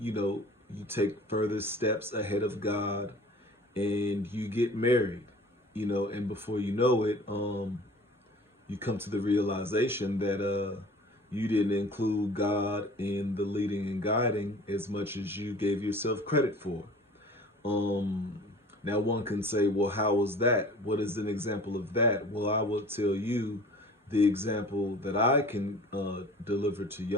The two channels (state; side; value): normal; both; correlation 0.44